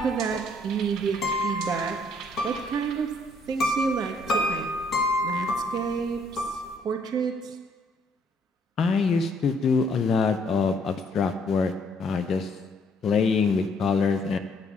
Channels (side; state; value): both; normal; correlation 0.66